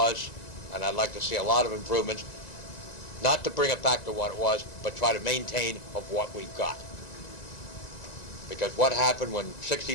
and I'd like to see a lot of improvements, not to bring it back to what it was, but try to maintain of what we've got. Because what happened when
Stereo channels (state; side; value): late; right; 1.9 ms